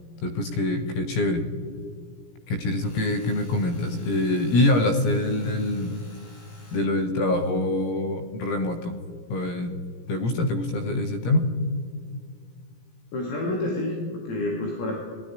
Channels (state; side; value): late; right; 17 ms